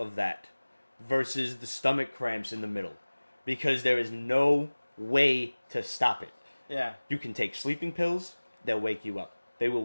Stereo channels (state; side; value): inverted; both; correlation -1.00